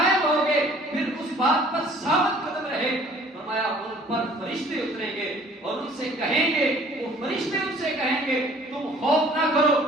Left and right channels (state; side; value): normal; both; correlation 0.54